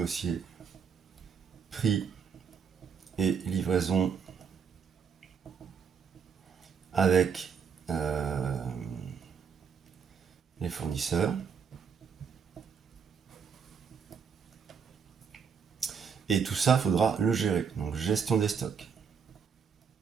prix et livraison avec les fournisseurs. Et tout ça, il faudra le gérer. Donc gestion des stocks.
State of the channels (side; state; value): left; quieter; 6.6 dB